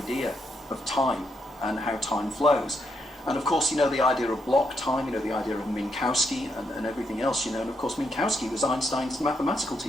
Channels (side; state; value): both; normal; correlation 0.79